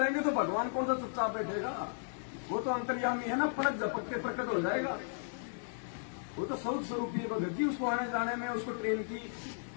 तो भगवान कौन सा चुपचाप बैठेगा? वो तो अंतर्यामी है ना, पलक झपक के प्रकट हो जाएगा। वो तो स्वरूप स्वरूप ही भगत जी, उसको आने जाने में उसको ट्रेन की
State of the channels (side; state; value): right; silent; digital silence